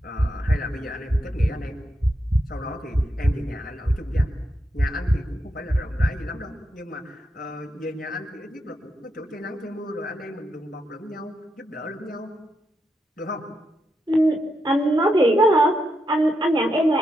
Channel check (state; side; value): normal; both; correlation 0.83